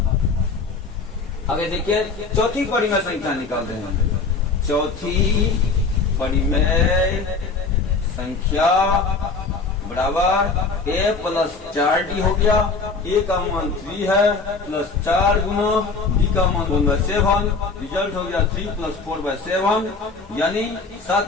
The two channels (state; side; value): quieter; right; 4.3 dB